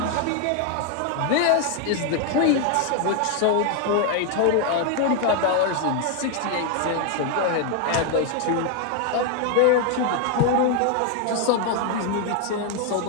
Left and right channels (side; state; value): both; different; correlation 0.00